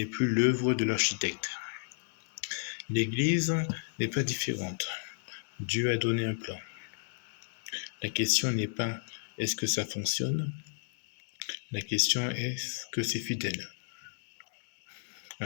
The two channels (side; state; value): right; silent; digital silence